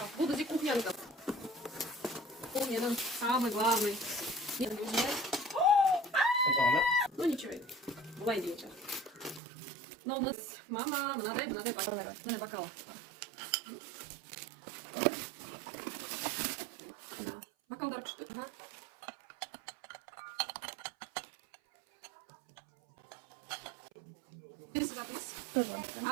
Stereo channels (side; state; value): left; drops out; at 9.4 s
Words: бұл бізде кухнянікі. Кухняның самый главный. Ну ничего, бывай вечер. Но у нас мама, мынадай бокал. Бокалдар күшті.